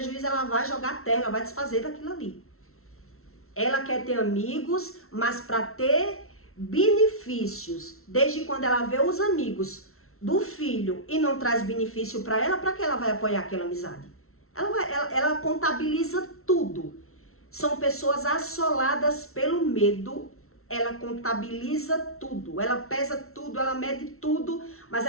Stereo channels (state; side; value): late; right; 0.63 ms